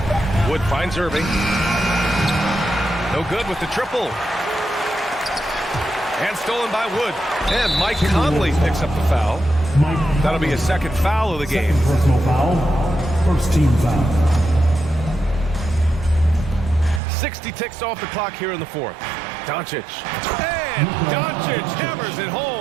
Wood finds Irving. No good with the triple. And stolen by Wood. And Mike Conley picks up the foul. That'll be his second foul of the game. Second personal foul. First team foul. 60 ticks off the clock here in the fourth. Doncic. And Doncic hammers it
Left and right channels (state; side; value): drops out; left; at 17.0 s